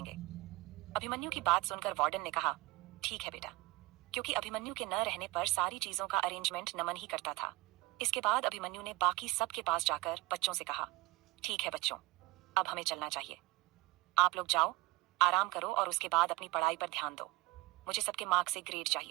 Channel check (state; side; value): quieter; left; 20.7 dB